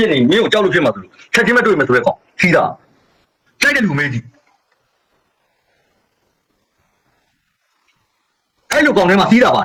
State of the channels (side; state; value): both; identical; correlation 1.00